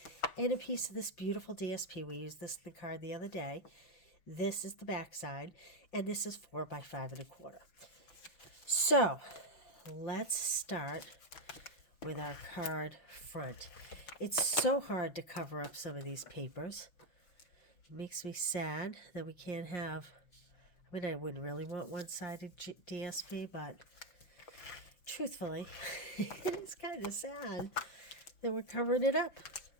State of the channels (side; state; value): right; late; 6.0 ms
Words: and a piece of this beautiful DSP. We used this in the card the other day. This is the back side, and this is 4 by 5 1/4. So let's start with our card front. It's so hard to cover up some of these papers. It makes me sad that we can't have, I mean, I wouldn't really want one-sided DSP, but truthfully, it's kind of sad that we're covering it up.